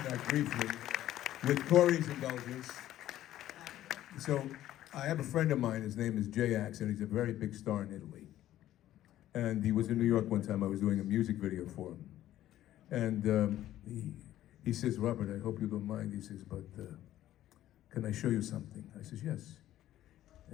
that briefly, with Corey's indulgence. So, I have a friend of mine, his name is Jay Axe, and he's a very big star in Italy. And he was in New York one time, I was doing a music video for him. And he says, Robert, I hope you don't mind, he says, but can I show you something? I says, yes.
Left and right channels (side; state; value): right; quieter; 13.2 dB